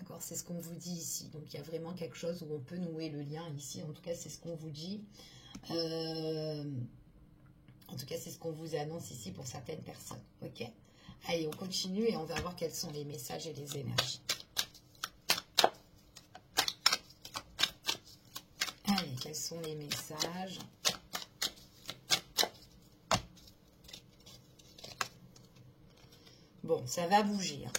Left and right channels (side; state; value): both; identical; correlation 1.00